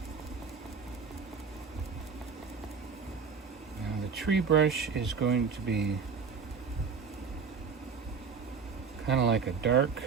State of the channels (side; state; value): left; quieter; 5.7 dB